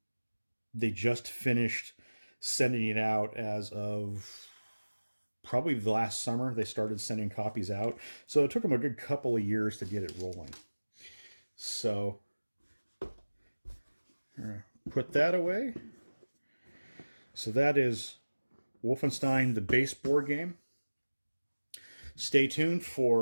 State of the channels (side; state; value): both; inverted; correlation -1.00